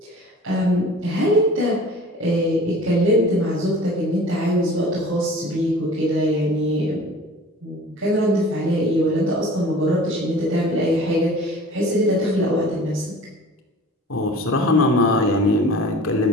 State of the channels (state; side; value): normal; both; correlation 0.44